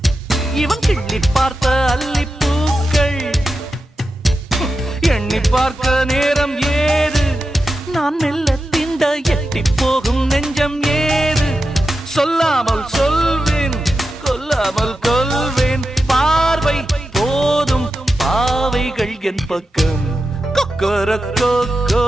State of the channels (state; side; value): normal; both; correlation 0.91